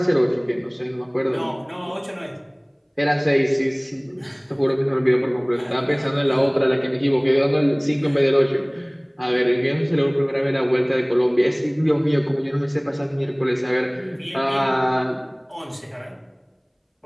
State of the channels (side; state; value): both; identical; correlation 1.00